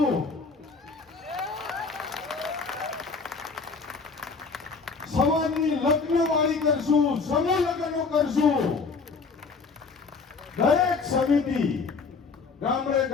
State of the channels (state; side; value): quieter; right; 4.7 dB